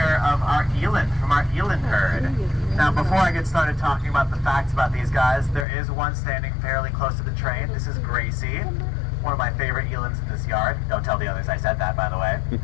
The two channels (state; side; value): drops out; right; at 5.7 s